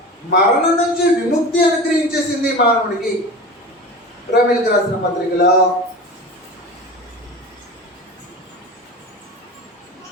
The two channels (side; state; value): both; normal; correlation 0.32